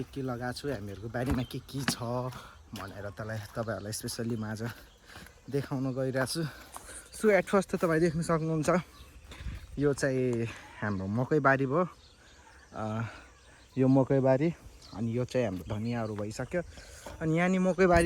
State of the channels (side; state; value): both; identical; correlation 1.00